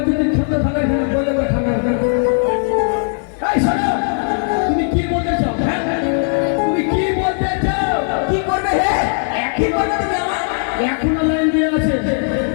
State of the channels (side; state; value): right; silent; 64 dB below the other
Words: যদি ঠান্ডা ঠান্ডা খেলে বলে বলে ঠান্ডা এই শোনো তুমি কি বলতে চাও? হ্যাঁ তুমি কি বলতে চাও? কি করবে হে কি করবে তুমি আমার এখনো লাইন দিয়ে আছে।